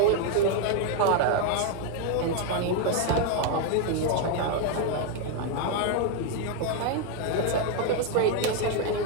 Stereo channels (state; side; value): different; both; correlation 0.01